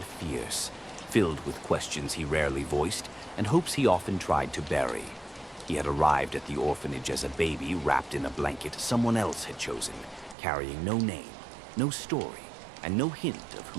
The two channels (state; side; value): drops out; left; at 10.4 s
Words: fierce, filled with questions he rarely voiced and hopes he often tried to bury. He had arrived at the orphanage as a baby wrapped in a blanket someone else had chosen, carrying no name, no story, and no hint of